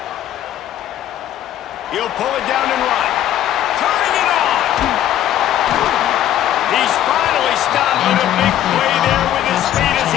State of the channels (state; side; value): quieter; right; 11.9 dB